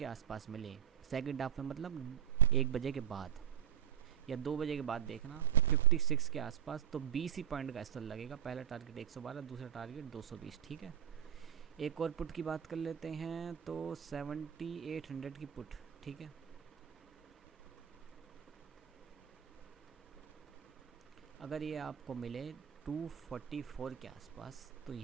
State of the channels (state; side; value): quieter; left; 10.0 dB